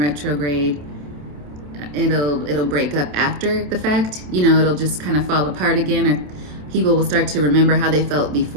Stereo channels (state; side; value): late; left; 27 ms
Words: it'll break up after the fact. You know, it'll just kind of fall apart again, or people will start to remember how they felt